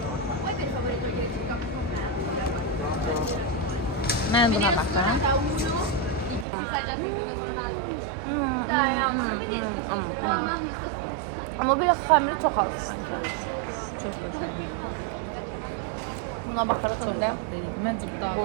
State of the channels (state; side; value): drops out; left; at 6.5 s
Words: Ben buna bakıyorum. Amma belə xəmiri çox az sanki. Çok güzel. Buna baxaraq Çok öndə tatlı değil. Bence bu daha bu